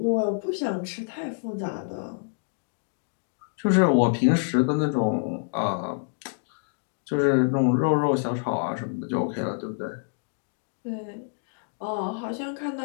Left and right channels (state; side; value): silent; right; digital silence